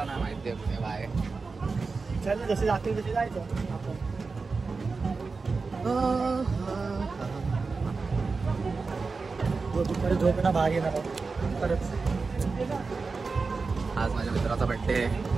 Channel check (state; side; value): quieter; left; 4.3 dB